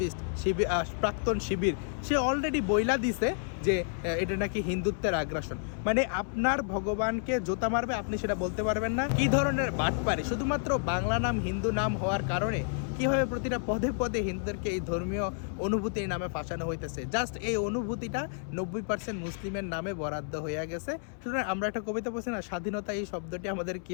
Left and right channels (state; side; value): silent; right; 57 dB below the other